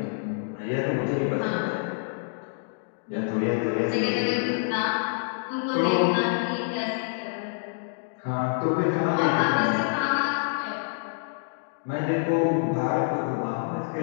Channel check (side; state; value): right; silent; digital silence